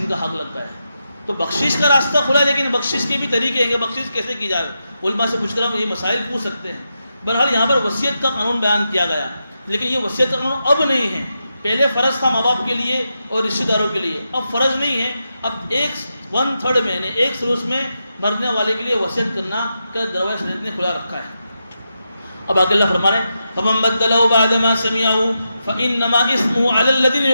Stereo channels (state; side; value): inverted; both; correlation -0.87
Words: کا حق لگتا ہے. تو بخشش کا راستہ کھلا ہے، لیکن بخشش کے بھی طریقے ہیں کہ بخشش کیسے کی جائے. علماء سے پوچھ کر ہم یہ مسائل پوچھ سکتے ہیں. بہرحال یہاں پر وصیت کا قانون بیان کیا گیا، لیکن یہ وصیت کا قانون اب نہیں ہے. پہلے فرض تھا ماں باپ کے لیے اور رشتہ داروں کے لیے، اب فرض نہیں ہے. اب 1/3 میں، یعنی 1/3 میں مرنے والے کے لیے وصیت کرنا کا دروازہ شریعت نے کھلا رکھا ہے. اب آگے اللہ فرما رہے ہیں فَمَن بَدَّلَهُ بَعْدَ مَا سَمِعَهُ فَإِنَّمَا إِثْمُهُ عَلَى الَّذِينَ